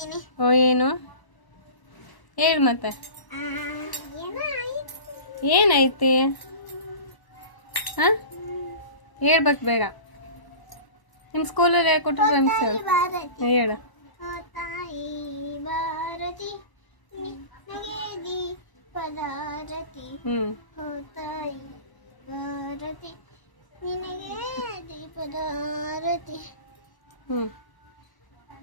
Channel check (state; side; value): late; right; 1.0 ms